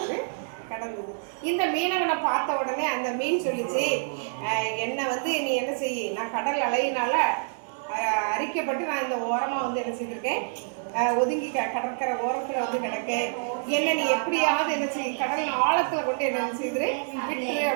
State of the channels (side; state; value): left; silent; digital silence